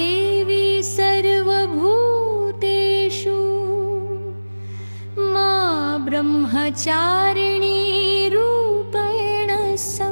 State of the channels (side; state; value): both; inverted; correlation -1.00